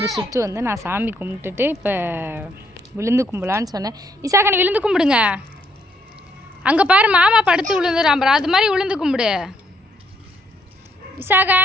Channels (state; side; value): normal; both; correlation 0.71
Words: சுற்று வந்து நான் சாமி கும்பிட்டுட்டு இப்போ விழுந்து கும்பலான்னு சொன்னேன். விசாகன் விழுந்து கும்பிடுங்க. அங்கே பாரு மாமா படுத்து விழுந்துறாம்பா, அது மாதிரி விழுந்து கும்பிடு